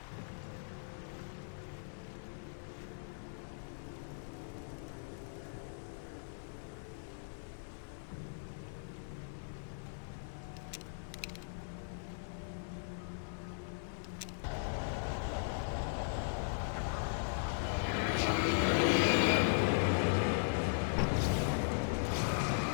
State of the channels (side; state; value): right; silent; digital silence